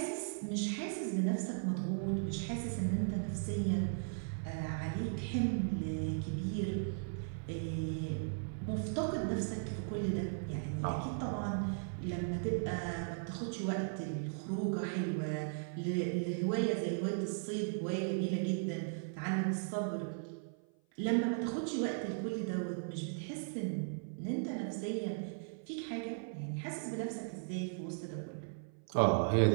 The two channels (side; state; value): left; silent; 53 dB below the other